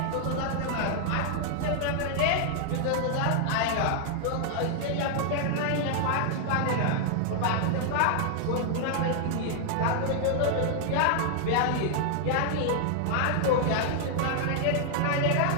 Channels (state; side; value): different; both; correlation 0.00